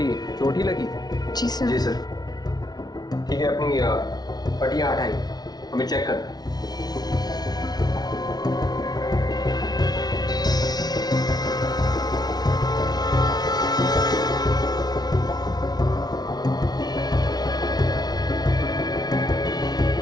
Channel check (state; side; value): late; right; 0.19 ms